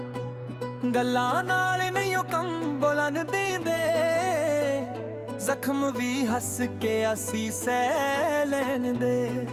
ਗੱਲਾਂ ਨਾਲ ਨਹੀਂ ਉਹ ਕੰਮ ਬੋਲਣ ਦਿੰਦੇ, ਜ਼ਖਮ ਵੀ ਹੱਸ ਕੇ ਅਸੀਂ ਸਹਿ ਲੈਣ ਦੇ।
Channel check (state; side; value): identical; both; correlation 1.00